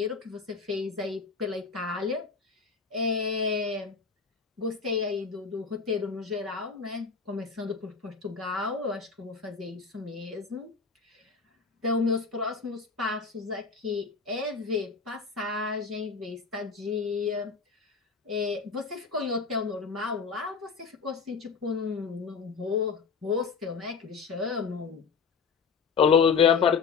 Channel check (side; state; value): right; quieter; 5.4 dB